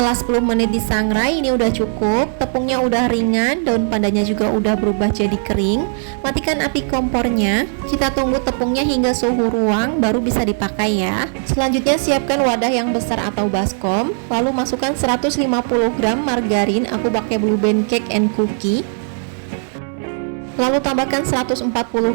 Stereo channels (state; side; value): silent; left; digital silence